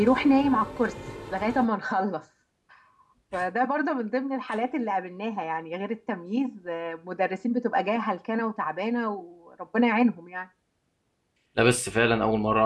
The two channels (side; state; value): both; identical; correlation 1.00